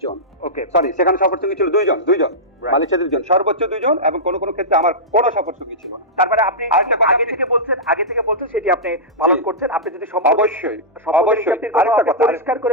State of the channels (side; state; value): both; normal; correlation -0.13